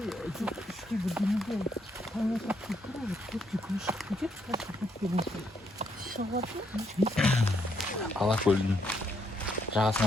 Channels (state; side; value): normal; both; correlation 0.74